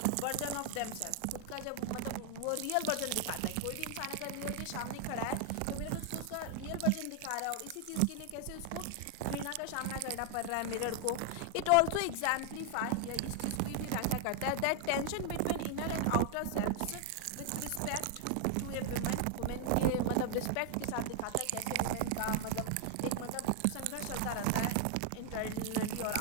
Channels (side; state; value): both; different; correlation 0.00